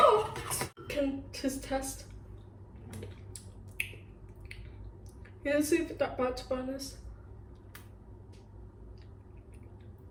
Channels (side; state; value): both; identical; correlation 1.00